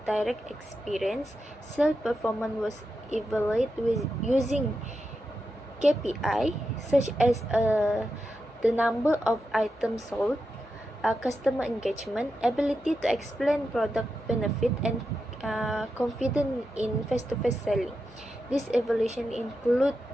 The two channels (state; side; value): normal; both; correlation 0.88